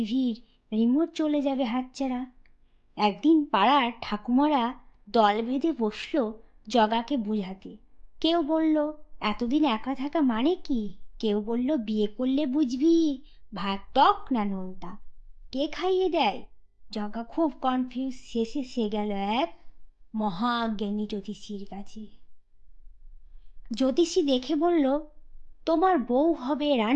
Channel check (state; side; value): identical; both; correlation 1.00